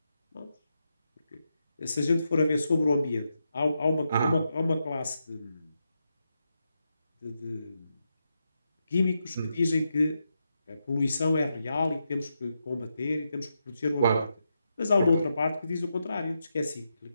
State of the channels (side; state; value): both; inverted; correlation -0.85